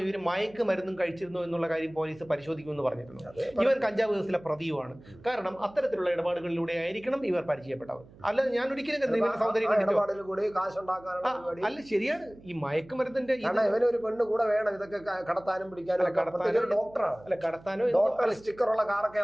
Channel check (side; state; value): right; noise; hum, 23 dB below the sound